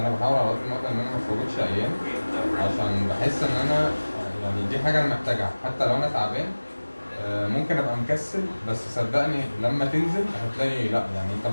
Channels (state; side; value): inverted; both; correlation -1.00